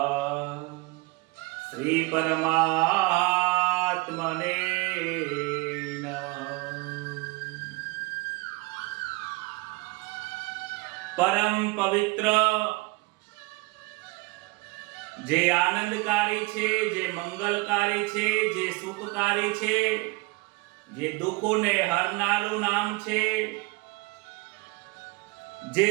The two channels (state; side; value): quieter; left; 24.1 dB